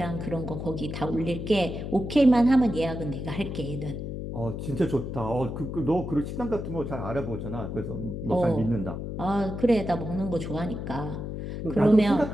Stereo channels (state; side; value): noise; left; hum, 6 dB below the sound